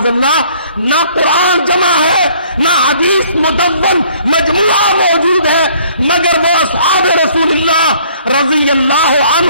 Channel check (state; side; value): inverted; both; correlation -0.59